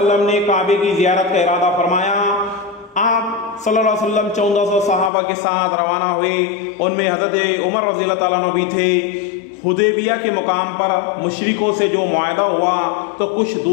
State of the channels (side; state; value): right; drops out; at 5.1 s